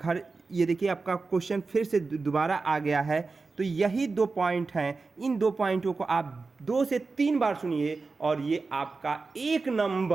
ये देखिए आपका क्वेश्चन फिर से दोबारा आ गया है। तो यही 2 पॉइंट हैं। इन 2 पॉइंटों को आप 2 से 3 बार सुनिए और ये आपका 1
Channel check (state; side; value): quieter; left; 4.1 dB